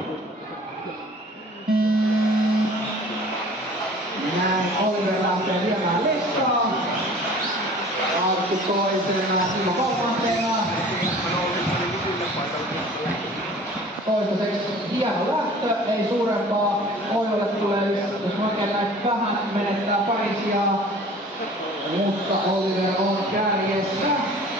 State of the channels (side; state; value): both; normal; correlation 0.46